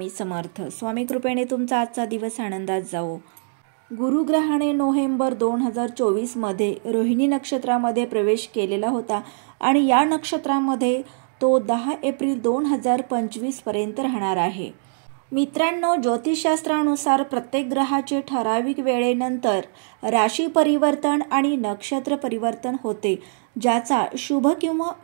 समर्थ. स्वामी कृपेने तुमचा आजचा दिवस आनंदात जावो. गुरुग्रहाने नोव्हेंबर 2024 मध्ये रोहिणी नक्षत्रामध्ये प्रवेश केलेला होता आणि या नक्षत्रामध्ये तो 10 एप्रिल 2025 पर्यंत राहणार आहे. मित्रांनो, ज्योतिषशास्त्रानुसार प्रत्येक ग्रहाचे ठराविक वेळेनंतर राशी परिवर्तन आणि नक्षत्र परिवर्तन होते, ज्याचा शुभ किंवा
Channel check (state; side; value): silent; left; digital silence